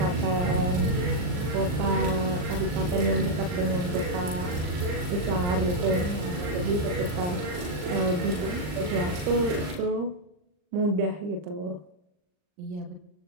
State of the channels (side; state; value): left; late; 39 ms